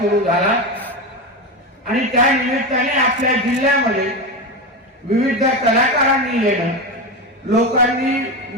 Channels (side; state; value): both; normal; correlation 0.18